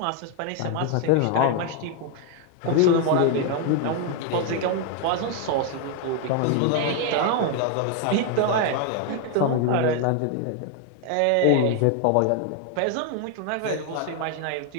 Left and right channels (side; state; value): both; different; correlation 0.00